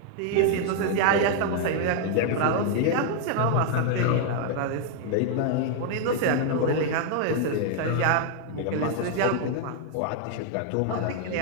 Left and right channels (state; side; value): different; both; correlation 0.00